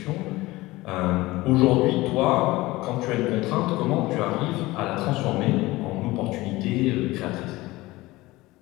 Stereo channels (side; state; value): right; quieter; 19.6 dB